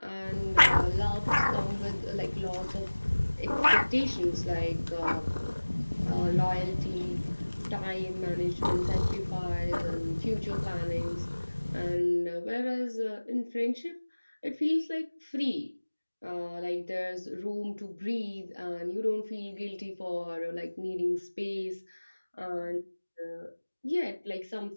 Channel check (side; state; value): both; inverted; correlation -1.00